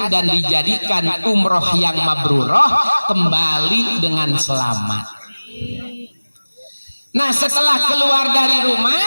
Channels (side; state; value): both; inverted; correlation -1.00